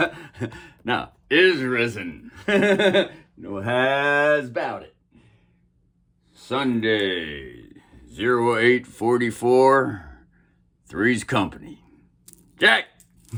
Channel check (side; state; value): both; identical; correlation 1.00